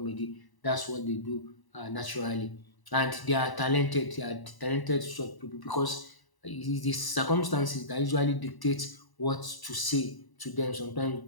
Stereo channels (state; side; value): late; right; 1.0 ms